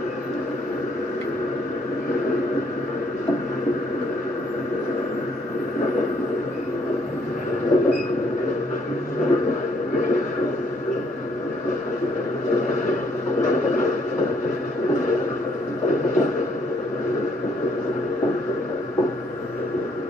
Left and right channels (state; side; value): normal; both; correlation 0.67